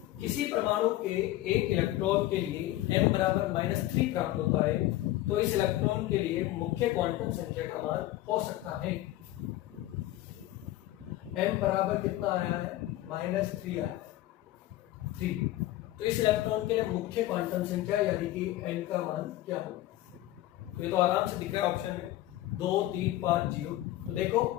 किसी परमाणु के एक इलेक्ट्रॉन के लिए m बराबर -3 प्राप्त होता है, तो इस इलेक्ट्रॉन के लिए मुख्य क्वांटम संख्या का मान हो सकता है। m बराबर कितना आया है -3 आया है 3, तो इस इलेक्ट्रॉन के लिए मुख्य क्वांटम संख्या यानी कि n का मान क्या होगा, तो ये तो आराम से दिख रहा है ऑप्शन में 2 3 5 0। तो देखो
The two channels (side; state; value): right; quieter; 15.6 dB